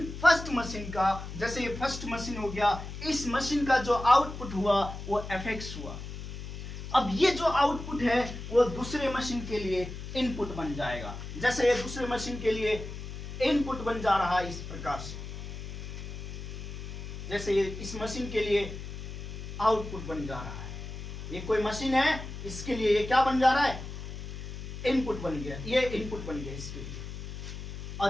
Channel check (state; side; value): noise; left; hum, 9 dB below the sound